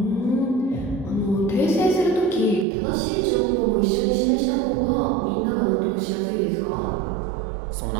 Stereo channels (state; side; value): drops out; left; at 2.7 s